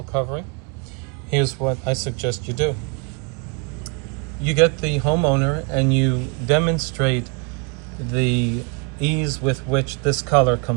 covering, here's what I suggest you do. You get the homeowner and you demonstrate the ease with which this color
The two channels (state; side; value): quieter; left; 33.6 dB